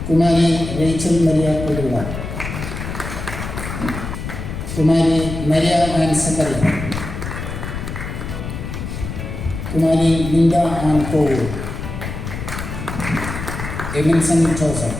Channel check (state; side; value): noise; left; rumble, 7 dB below the sound